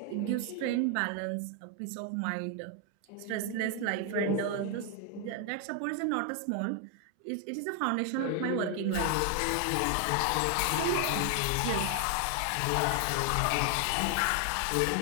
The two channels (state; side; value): different; both; correlation 0.01